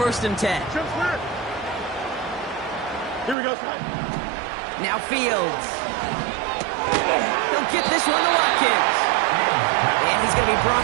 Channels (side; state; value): left; drops out; at 3.4 s